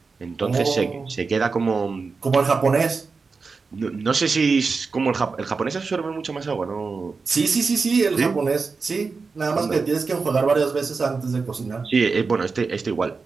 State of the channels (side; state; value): left; quieter; 4.6 dB